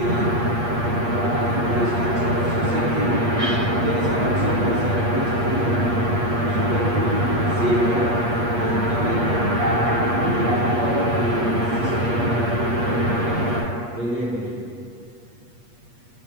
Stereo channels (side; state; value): left; late; 8.4 ms